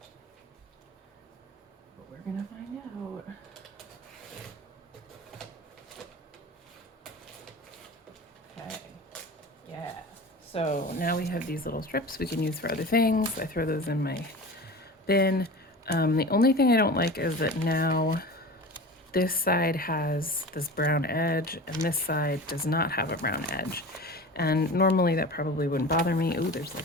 But we're going to find out. Okay. Yeah. So now we have these little strips we can use for other things. I throw those in my bin. The only thing I don't like is that now this side has this brown edge and this side does not have a brown edge. And normally that probably wouldn't bother me. Ooh, there's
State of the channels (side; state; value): both; normal; correlation 0.34